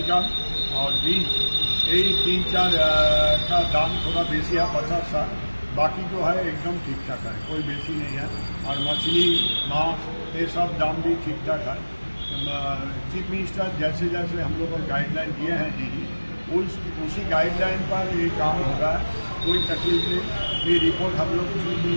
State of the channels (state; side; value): inverted; both; correlation -1.00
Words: और बीन्स, यही 3-4 का दाम थोड़ा बेसी है, 50-60। बाकी जो है एकदम ठीक ठाक है, कोई बेसी नहीं है। और मछली, मांस, ये सब दाम भी ठीक ठाक है। चीफ मिनिस्टर जैसे जैसे हम लोग को गाइडलाइन दिए हैं डीजी, उसी गाइडलाइन पर ये काम हो रहा है। कोई तकलीफ नहीं। ये रिपोर्ट हम लोग चीफ